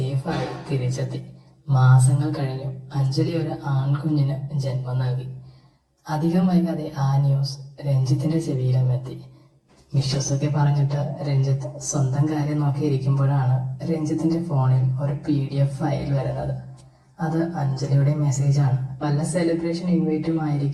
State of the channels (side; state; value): both; identical; correlation 1.00